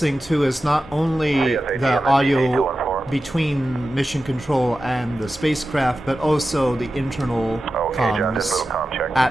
to is not only the audio between mission control and the spacecraft, but also the internal comms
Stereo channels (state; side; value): normal; both; correlation 0.93